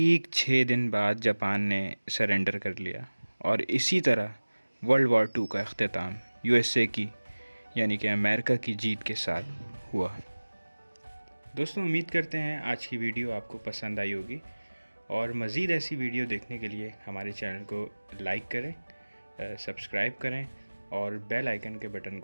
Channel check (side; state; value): both; inverted; correlation -1.00